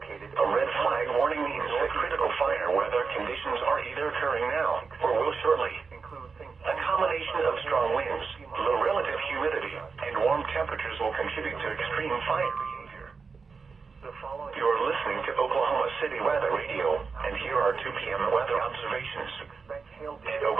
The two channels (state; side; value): quieter; left; 5.0 dB